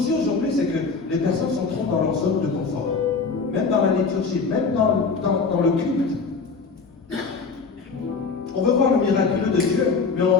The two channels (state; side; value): quieter; right; 4.8 dB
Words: aujourd'hui, c'est que les personnes sont trop dans leur zone de confort. Même dans la liturgie, même dans le culte. On veut voir le miraculeux de Dieu, mais